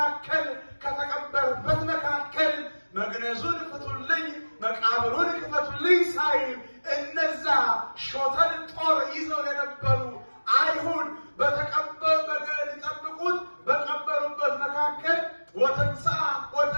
ከተቀበረበት መካከል መግነዙን ፍቱልኝ መቃብሩን ክፈቱልኝ ሳይል እነዛ ሾተል ጦር ይዘው የነበሩ አይሁድ ሊጠብቁት በቀበሩበት መካከል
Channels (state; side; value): inverted; both; correlation -1.00